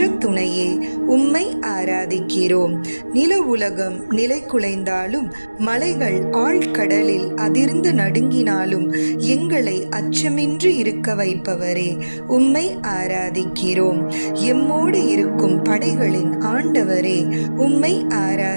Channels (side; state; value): both; inverted; correlation -1.00